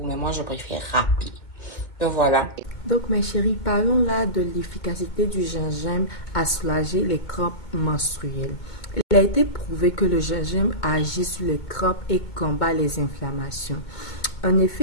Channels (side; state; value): right; late; 2.2 ms